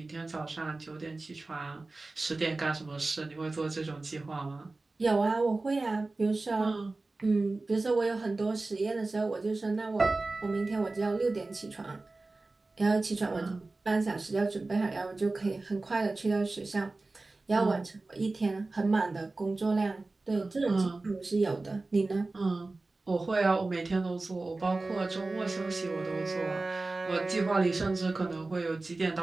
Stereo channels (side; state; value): left; quieter; 3.3 dB